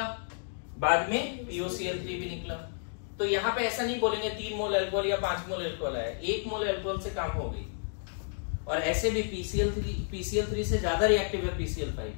बाद में POCl3 भी निकला। तो यहाँ पे ऐसा नहीं बोलेंगे 3 मोल अल्कोहल या 5 मोल अल्कोहल आया, 1 मोल अल्कोहल से काम हो गई। और ऐसे भी PCl3 से ज्यादा रिएक्टिव है PCl5,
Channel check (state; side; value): silent; right; digital silence